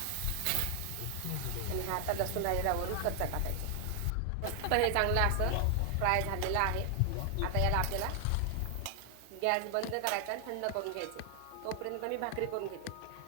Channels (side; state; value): both; different; correlation 0.00